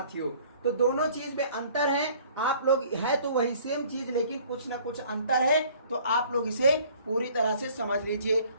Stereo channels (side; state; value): both; inverted; correlation -0.54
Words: तो दोनों चीज में अंतर है। आप लोग है तो वही सेम चीज, लेकिन कुछ ना कुछ अंतर है। तो आप लोग इसे पूरी तरह से समझ लीजिए।